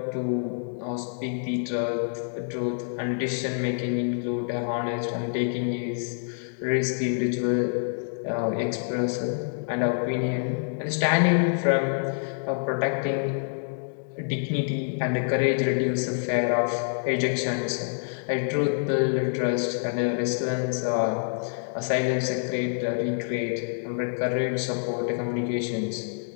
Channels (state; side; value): silent; right; digital silence